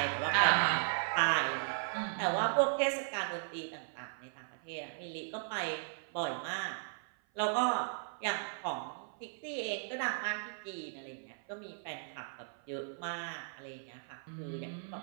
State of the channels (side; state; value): left; silent; 53 dB below the other